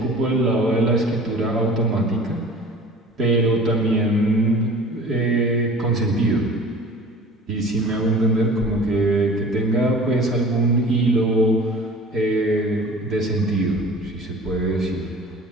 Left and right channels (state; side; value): normal; both; correlation 0.43